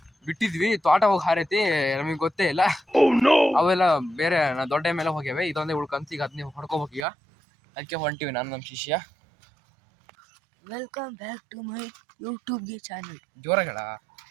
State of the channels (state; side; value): drops out; left; at 7.1 s